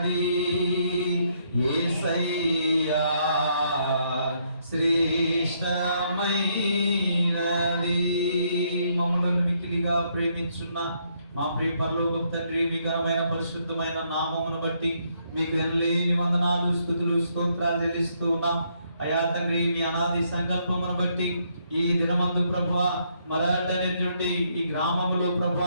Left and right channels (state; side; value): inverted; both; correlation -0.73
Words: యేసయ్యా, శ్రేష్టమైనది. మమ్మల్ని మిక్కిలిగా ప్రేమించున్న మా ప్రియ పరలోకపు తండ్రి, మీ ఘనమైన పరిశుద్ధమైన నామమును బట్టి మీకు ఎనలేని వందనాలు స్తుతులు స్తోత్రాలు చెల్లిస్తూ ఉన్నాం. అయా తండ్రి, మీ అనాది సంకల్పమును బట్టి ఈ దినమందు ప్రభువా మరాఠీ ఈ గ్రామంలో